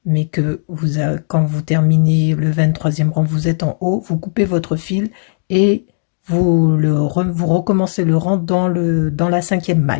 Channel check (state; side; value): silent; right; digital silence